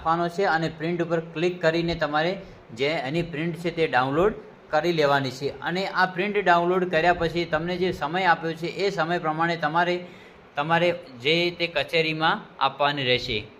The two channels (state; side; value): identical; both; correlation 1.00